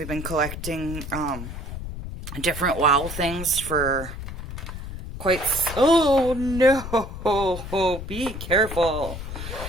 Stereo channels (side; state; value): left; noise; rumble, 8 dB below the sound